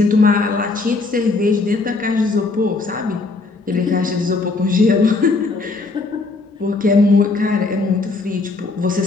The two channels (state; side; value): quieter; right; 3.7 dB